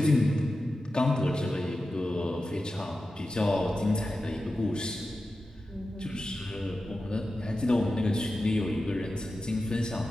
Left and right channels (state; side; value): normal; both; correlation 0.92